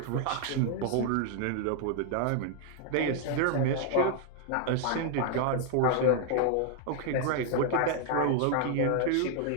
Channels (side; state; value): both; different; correlation 0.00